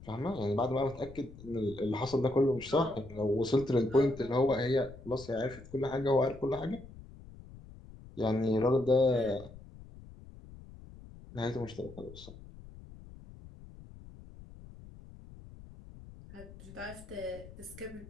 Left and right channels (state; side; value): noise; left; rumble, 17 dB below the sound